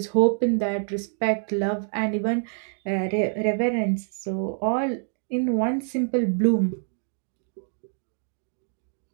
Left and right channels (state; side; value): silent; left; digital silence